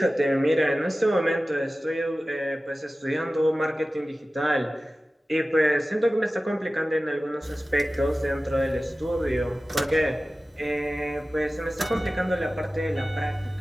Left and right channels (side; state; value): both; normal; correlation 0.96